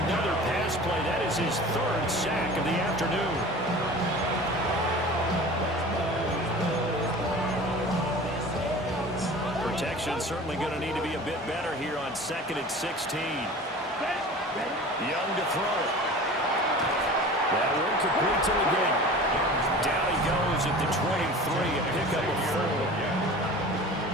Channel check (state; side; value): normal; both; correlation 0.39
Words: pass play. That is his third sack of the afternoon. Protection certainly going to need to be a bit better here on 2nd and 16. Young to throw it. That one complete to the game. Down he goes at the 23, a pickup of 4.